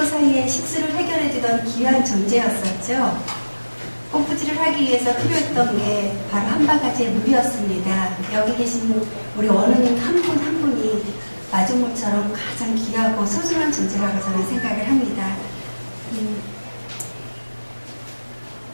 사이에 식수를 해결해주던 귀한 존재였었죠. 펌프질을 하기 위해서 필요했던 게 바로 한 바가지의 물이었습니다. 여기 계신 우리 원우님 한 분 한 분이 마중물처럼 가장 귀하고 소중한 존재라고 저는 생각을 합니다.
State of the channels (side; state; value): both; inverted; correlation -1.00